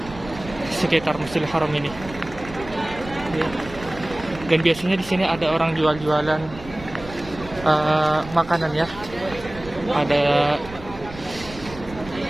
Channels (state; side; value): noise; right; rumble, 16 dB below the sound